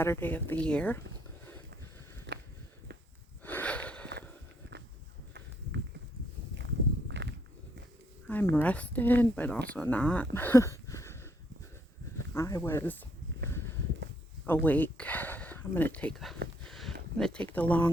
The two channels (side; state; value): both; normal; correlation 0.71